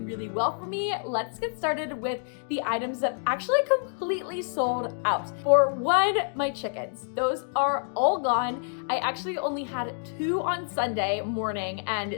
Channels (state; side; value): silent; right; digital silence